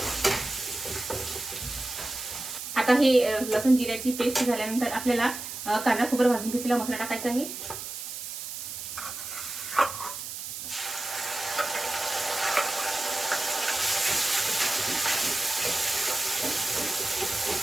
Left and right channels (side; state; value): right; noise; hiss, 8 dB below the sound